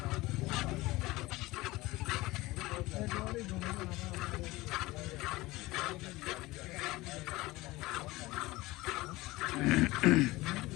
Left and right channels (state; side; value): quieter; right; 19.8 dB